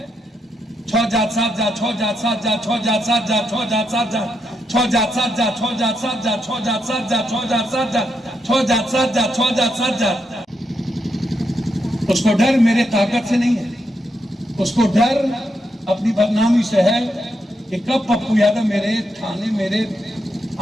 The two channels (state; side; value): normal; both; correlation 0.81